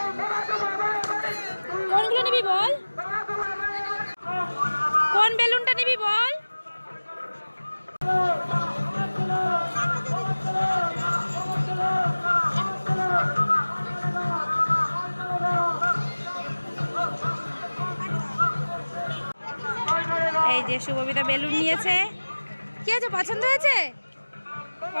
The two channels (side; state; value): both; inverted; correlation -1.00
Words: কোনগুলো নিবি বল, কোন বেলুনটা নিবি বল। এই যে শুভবিতা বেলুন নিয়েছে। কি আছে, পছন্দ হয়েছে?